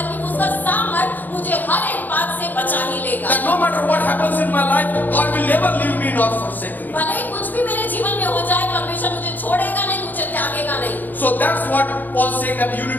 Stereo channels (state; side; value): late; right; 0.085 ms